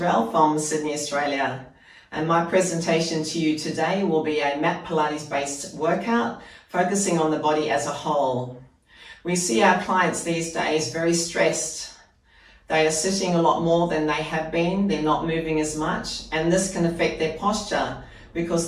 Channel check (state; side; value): identical; both; correlation 1.00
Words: from Sydney, Australia, and my presentation to you today will be a mat Pilates based workout focusing on the body as a whole. We see our clients these days very stressed. They are sitting a lot more than they have been, they're not moving as much, and this can affect their posture because